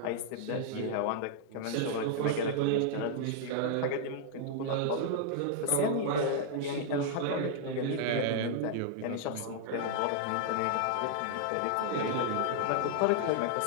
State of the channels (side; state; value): both; different; correlation -0.01